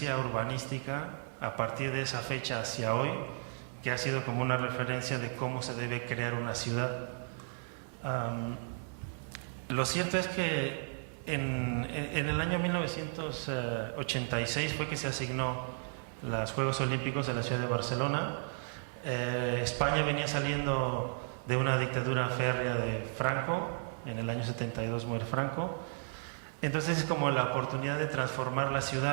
urbanística a partir de esa fecha hacia hoy, que ha sido como una referencia de cómo se debe crear una ciudad. Lo cierto es que en el año 1986 fue que se asignó los Juegos Olímpicos de la ciudad de Barcelona. España venía saliendo de una dictadura férrea de Franco, en el año 72 muere Franco. Entonces es como la oportunidad de transformar la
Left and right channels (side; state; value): left; silent; 55 dB below the other